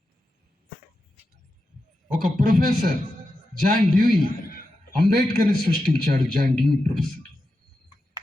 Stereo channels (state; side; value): normal; both; correlation 0.89